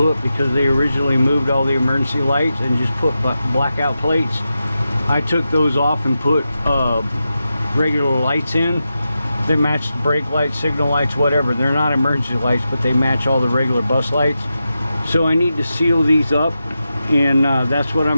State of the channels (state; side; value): inverted; both; correlation -0.90